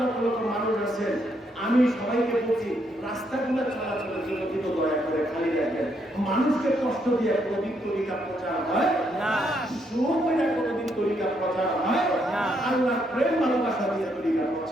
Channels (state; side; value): normal; both; correlation 0.75